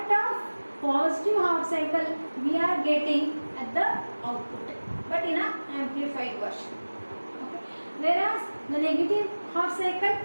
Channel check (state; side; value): inverted; both; correlation -1.00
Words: of positive half cycle we are getting at the output, but in an amplified version. Okay. Whereas the negative half